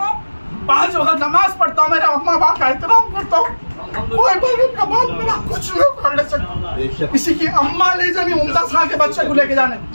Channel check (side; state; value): both; inverted; correlation -1.00